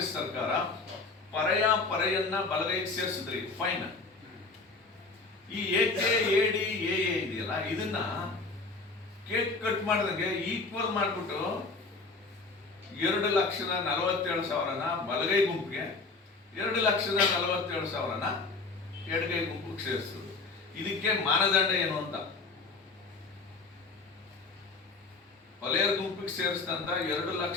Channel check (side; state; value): right; quieter; 3.9 dB